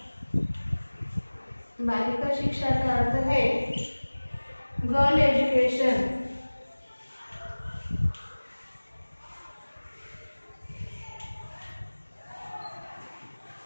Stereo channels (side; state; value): both; inverted; correlation -1.00